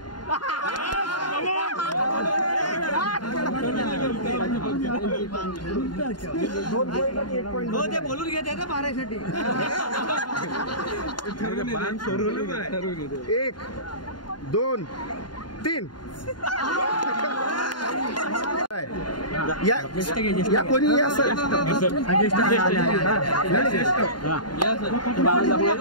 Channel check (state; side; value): late; right; 0.71 ms